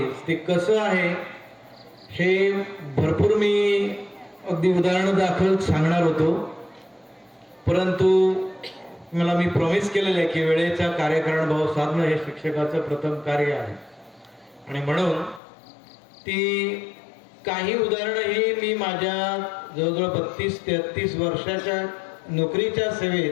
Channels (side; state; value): right; drops out; at 15.4 s